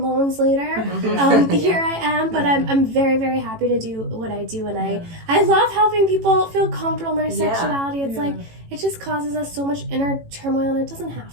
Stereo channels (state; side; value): late; left; 18 ms